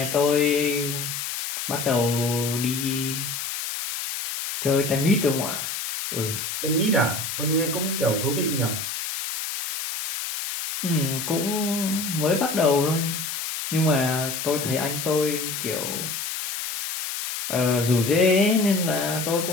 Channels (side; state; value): left; noise; hiss, 4 dB below the sound